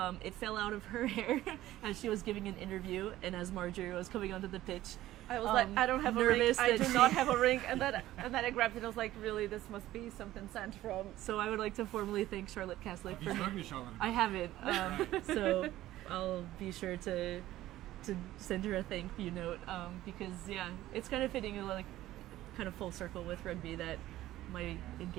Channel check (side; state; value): left; quieter; 15.0 dB